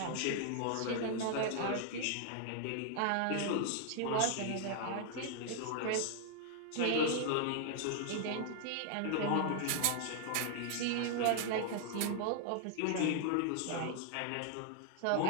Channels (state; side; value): different; both; correlation 0.00